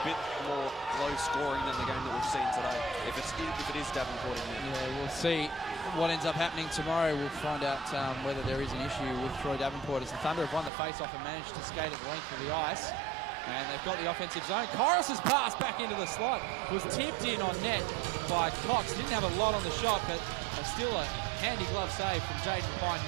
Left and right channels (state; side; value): drops out; left; at 10.7 s